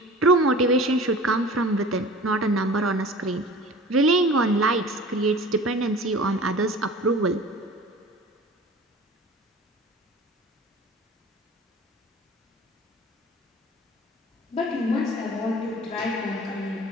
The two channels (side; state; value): both; normal; correlation 0.40